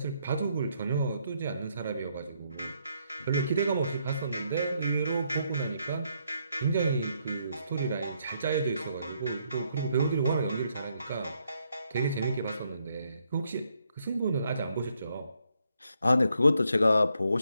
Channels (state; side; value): inverted; both; correlation -0.75